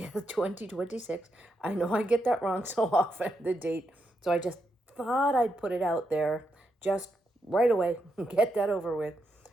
2026. I know I get that wrong so often, the date. So I just thought I'd put it out there just right away, get that over with,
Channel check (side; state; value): both; normal; correlation 0.82